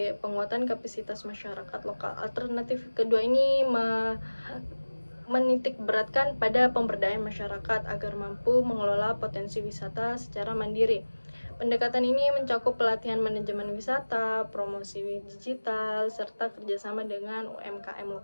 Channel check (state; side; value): inverted; both; correlation -1.00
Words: penguatan kapasitas masyarakat lokal. Alternatif kedua ini menitik beratkan pada pemberdayaan masyarakat agar mampu mengelola potensi wisata secara mandiri. Pendekatan ini mencakup pelatihan manajemen wisata, promosi digital, serta kerjasama dengan UMKM